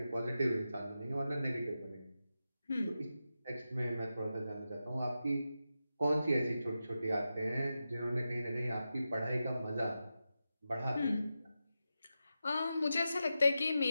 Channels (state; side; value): inverted; both; correlation -0.90